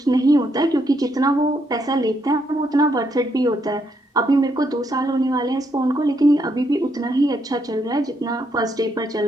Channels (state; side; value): normal; both; correlation 0.76